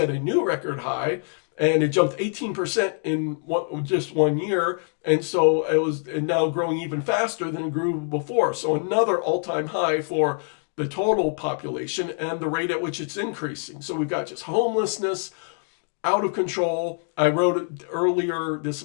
a new record high, and it jumped 18% in just 1 year. And so it was now growing even faster than it grew before. So another all-time high for the total population and the rate at which it's increasing. So we've got just homelessness out of control. I wrote it earlier this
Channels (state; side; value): silent; right; 56 dB below the other